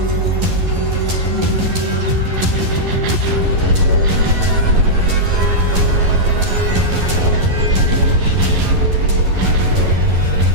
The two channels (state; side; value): late; left; 11 ms